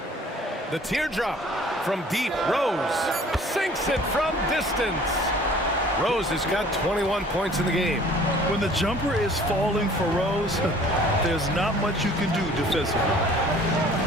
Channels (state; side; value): normal; both; correlation 0.51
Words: The teardrop from deep. Rose sinks it from distance. Rose has got 21 points in the game. When the jumper is falling for Rose, there's not much you can do defensively.